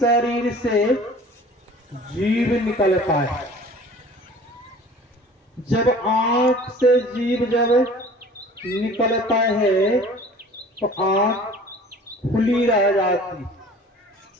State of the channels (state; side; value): normal; both; correlation 0.46